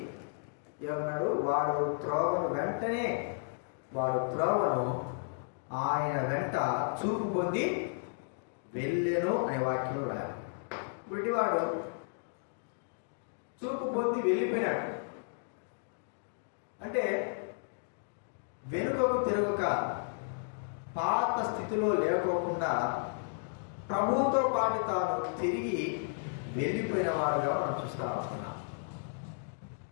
ఏమన్నాడు? వాడు త్రోవను ఆయన వెంట చూపు పొంది వెళ్ళెను అనే వాక్యం రాయాలి. గుడ్డివాడు చూపు పొంది వెళ్ళిపోయినాడు అంటే వెనుకకు తిరగక పాత స్థితిలో లేకోకుండా ప్రభువుతో పాటు తాను తిరిగి వెళ్ళిపోయిన వాడుగా మనం చూస్తా ఉంటున్నాం.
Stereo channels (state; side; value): silent; right; digital silence